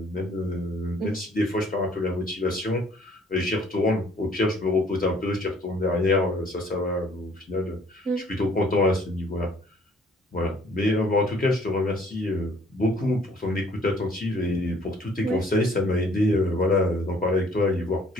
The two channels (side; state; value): both; normal; correlation 0.59